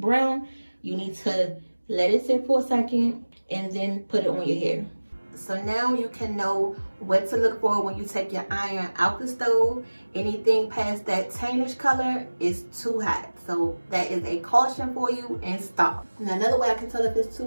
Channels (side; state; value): both; inverted; correlation -1.00